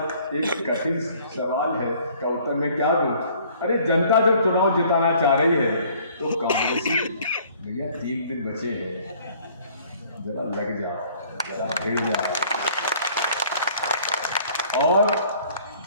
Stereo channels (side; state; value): both; inverted; correlation -0.57